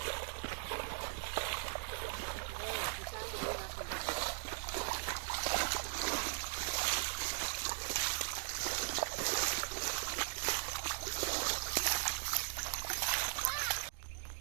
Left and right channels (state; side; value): silent; left; digital silence